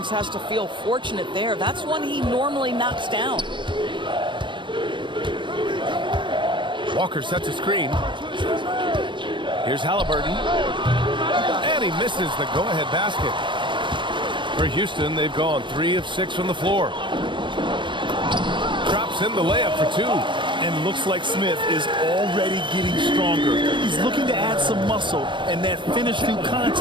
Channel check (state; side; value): late; left; 0.23 ms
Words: has to feel fortunate there. That's one he normally knocks down. Walker sets a screen. Here's Halliburton. And he misses the go-ahead basket. For Houston, they've gone 3 of 6 from the floor. Drops in the layup for 2. And looks like Smith is already getting stronger. He's looking to add some muscle, and that finish through